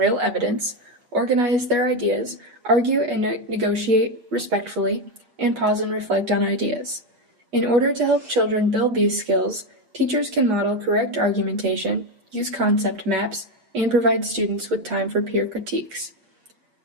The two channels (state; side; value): late; left; 8.3 ms